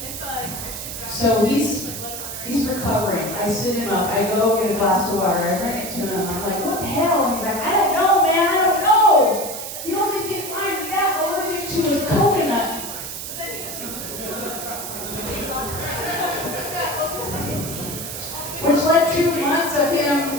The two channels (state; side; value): noise; right; hiss, 7 dB below the sound